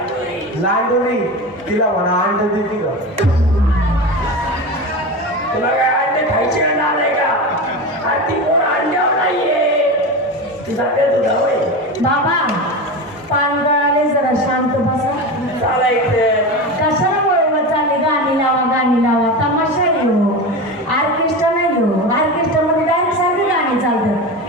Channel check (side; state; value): both; normal; correlation 0.24